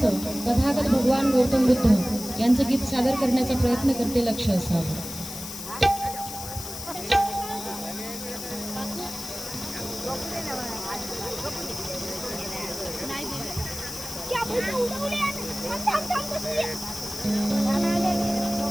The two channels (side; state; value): left; noise; hiss, 9 dB below the sound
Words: तथागत भगवान गौतम बुद्ध यांचं गीत सादर करण्याचा प्रयत्न करते लक्ष असावं.